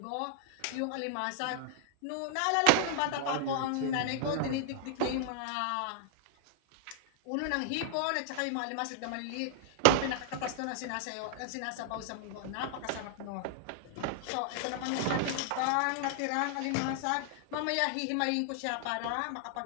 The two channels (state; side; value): different; both; correlation 0.00